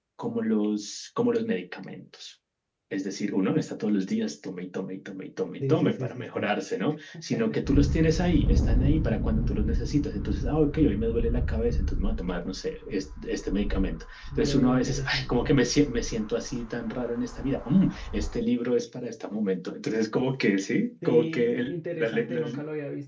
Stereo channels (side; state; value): both; identical; correlation 1.00